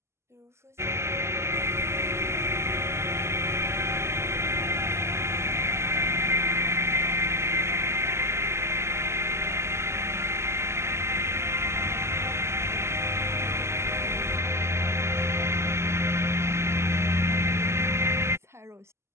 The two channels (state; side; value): late; left; 0.13 ms